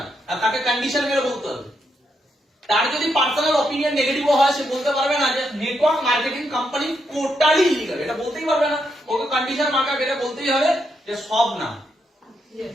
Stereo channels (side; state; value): both; normal; correlation 0.80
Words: আর তাকে কন্ডিশন মেরে বলতে হবে। তার যদি পার্সোনাল অপিনিয়ন নেগেটিভ হয়, সে বলতে পারবে না যে network marketing company totally illegal, এটা বলতেই পারবে না। ওকে কন্ডিশন মার্কা এটা বলতেই হবে যে সব না।